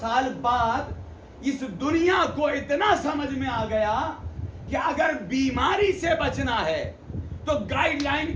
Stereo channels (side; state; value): both; identical; correlation 1.00